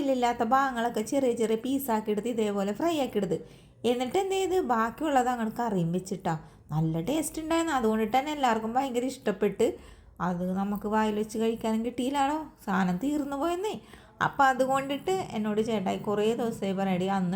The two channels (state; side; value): identical; both; correlation 1.00